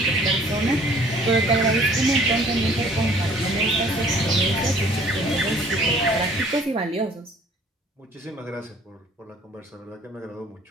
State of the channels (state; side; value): normal; both; correlation 0.55